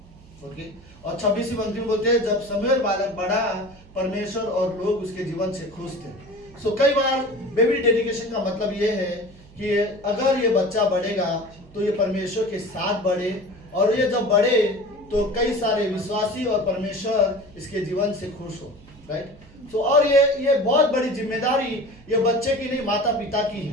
ओके? और 26वीं पंक्ति में बोलते हैं जब शमूएल बालक बढ़ा परमेश्वर और लोग उसके जीवन से खुश थे। सो कई बार बेबी डेडिकेशन का मतलब ये है कि अगर ये बच्चा बढ़ेगा तो ये परमेश्वर के साथ बढ़े, और ये जब बढ़े तो कई सारे विश्वासी और परमेश्वर इसके जीवन से खुश हो, राइट? सो और ये बहुत बड़ी जिम्मेदारी ये बच्चे की नहीं माता पिता की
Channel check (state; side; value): noise; right; hum, 23 dB below the sound